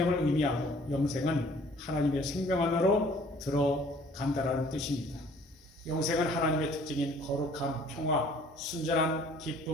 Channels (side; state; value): both; normal; correlation 0.55